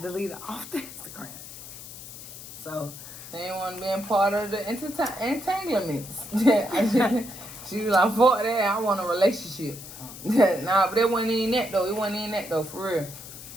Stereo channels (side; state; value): left; noise; hiss, 13 dB below the sound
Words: deleted off the Instagram. So she ain't want to be a part of the entanglements. She was like, fuck that, I want a relationship. Nah, but it wasn't even that though. It wasn't even that though, for real.